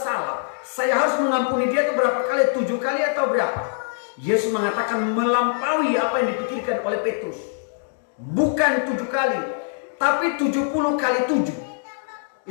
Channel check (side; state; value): right; silent; digital silence